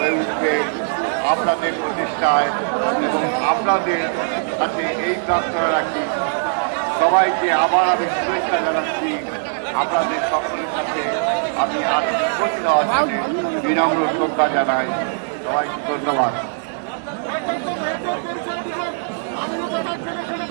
উঠবে আপনাদের প্রচেষ্টায় এবং আপনাদের কাছে এই প্রার্থনা রাখি সবাইকে আবার আমি শুভেচ্ছা জানাচ্ছি। আপনাদের সকলের কাছে আমি আর বিনম্র শ্রদ্ধা জানাই। সবাইকে ধন্যবাদ।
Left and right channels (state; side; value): silent; left; digital silence